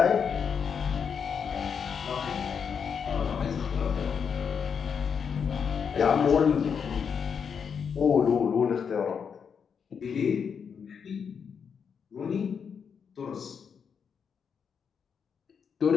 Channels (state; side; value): quieter; right; 6.7 dB